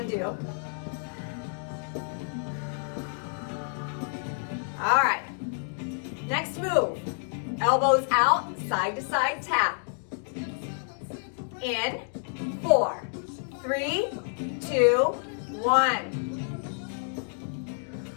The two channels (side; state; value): right; silent; 59 dB below the other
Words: do. All right. Next move. Elbows out, side to side tap. In 4, 3, 2, 1.